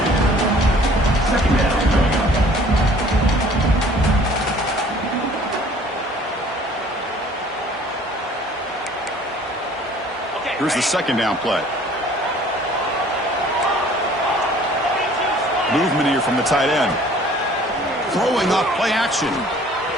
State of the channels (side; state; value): both; normal; correlation 0.53